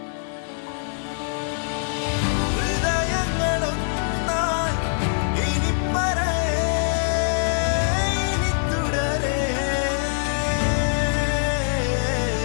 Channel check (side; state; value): right; silent; digital silence